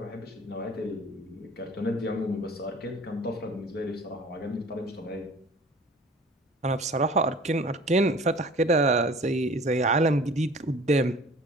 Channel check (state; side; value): normal; both; correlation 0.46